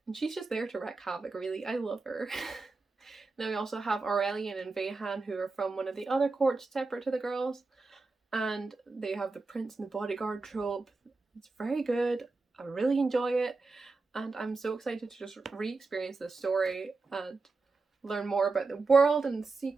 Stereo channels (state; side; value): quieter; left; 3.8 dB